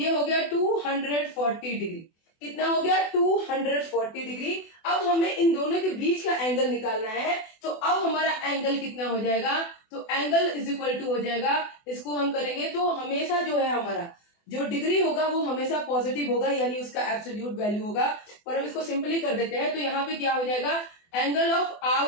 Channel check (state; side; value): late; right; 24 ms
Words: हो गया 240 डिग्री। कितना हो गया? 240 डिग्री। अब हमें इन दोनों के बीच का एंगल निकालना है। तो अब हमारा एंगल कितना हो जाएगा? तो एंगल इज इक्वल टू हो जाएगा, इसको हम करेंगे तो हमेशा जो है हमारा जो डिग्री होगा वो हमेशा पॉजिटिव होगा, यानी उसका एब्सोल्यूट वैल्यू होगा। पर हम इसको सिंपली कर देते हैं। तो यहाँ पे क्या हो जाएगा? Angle of